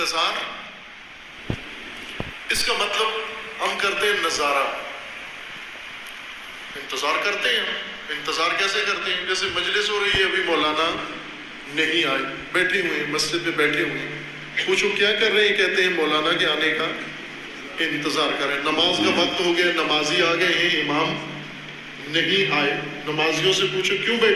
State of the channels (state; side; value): identical; both; correlation 1.00